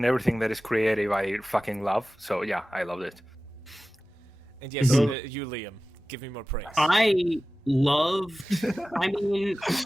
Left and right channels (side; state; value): both; normal; correlation 0.96